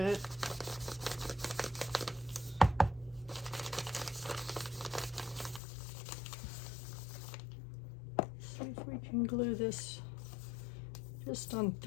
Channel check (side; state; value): right; drops out; at 5.6 s